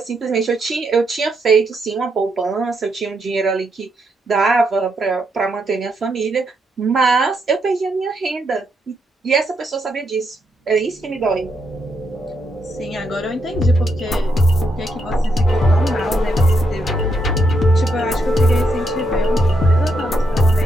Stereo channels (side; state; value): both; normal; correlation 0.79